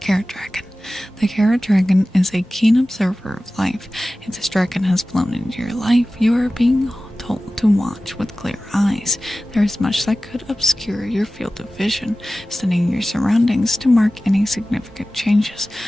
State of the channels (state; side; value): normal; both; correlation 0.96